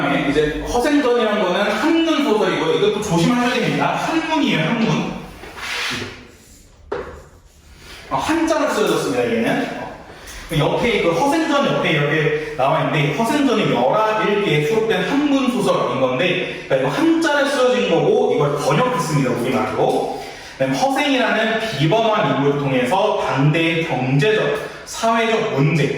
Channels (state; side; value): identical; both; correlation 1.00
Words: 이제 허생전이라는 거는 한문 소설이고요. 이것도 조심하셔야 됩니다. 한문이에요, 한문. 한자로 쓰여졌습니다, 얘는. 옆에 그 허생전 옆에 이렇게 나와 있는데 허생전이 11개에 수록된 한문 소설인 건데 그러니까 이거 한자로 쓰여진 거고 이걸 번역했습니다, 우리말로. 허생이라는 비범한 인물을 통해서 당대의 경제적, 사회적